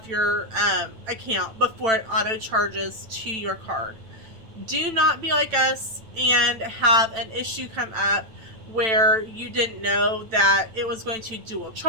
your account before it auto charges to your card. Do not be like us and have an issue come up where you didn't know that it was going to dual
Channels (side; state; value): left; late; 9.0 ms